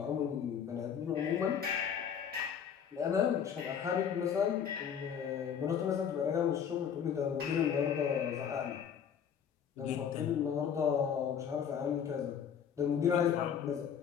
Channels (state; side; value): quieter; right; 8.0 dB